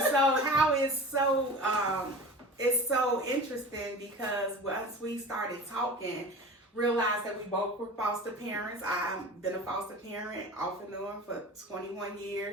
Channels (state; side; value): normal; both; correlation 0.36